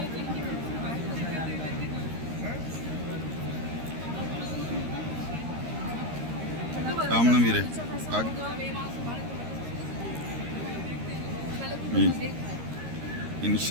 आमना भी रहे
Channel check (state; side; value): late; left; 13 ms